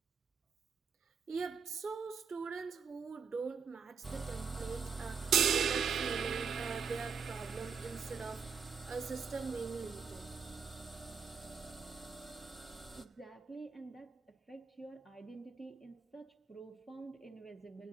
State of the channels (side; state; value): left; quieter; 5.9 dB